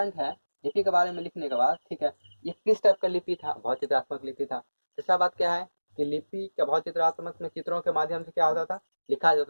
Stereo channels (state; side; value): inverted; both; correlation -1.00